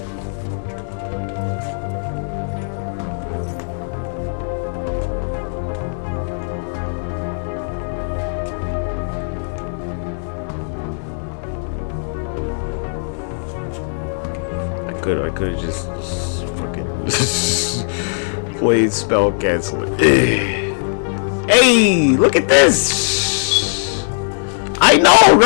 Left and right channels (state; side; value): silent; right; digital silence